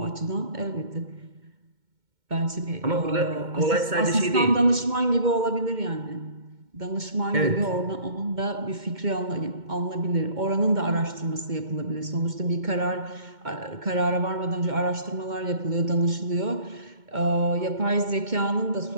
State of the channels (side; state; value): left; late; 2.2 ms